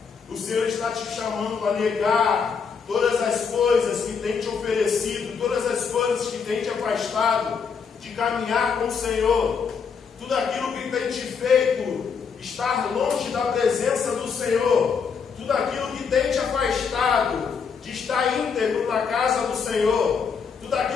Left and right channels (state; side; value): quieter; right; 6.0 dB